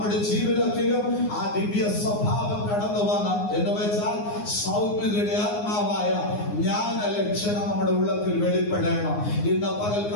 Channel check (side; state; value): right; late; 9.6 ms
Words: ജീവിതത്തിലും ആ ദിവ്യ സ്വഭാവം കടന്നു വന്ന് എന്ന് വെച്ചാൽ സൗമ്യതയുടെ ആത്മാവായ ജ്ഞാന ലക്ഷണം നമ്മുടെ ഉള്ളത്തിൽ വെളിപ്പെടണം. ഇന്ന്